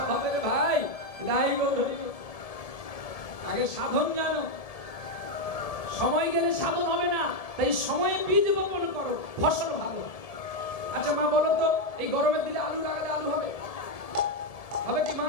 ভাই নাই গো। আগে সাধন জানো, সময় গেলে সাধন হবে না, তাই সময়ে বীজ বপন করো, ফসল ভালো। আচ্ছা মা বলো তো, এই গরমের দিনে আলু লাগালে আলু হবে? হবে কি মা?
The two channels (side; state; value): right; late; 1.7 ms